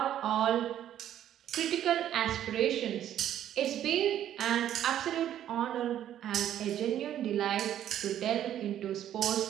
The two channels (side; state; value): left; quieter; 11.1 dB